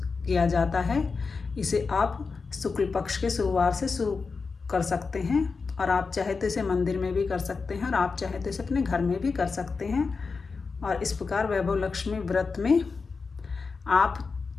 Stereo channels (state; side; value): quieter; right; 4.7 dB